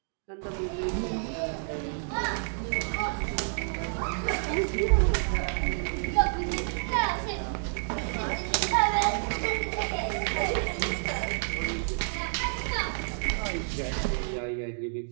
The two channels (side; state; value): left; silent; digital silence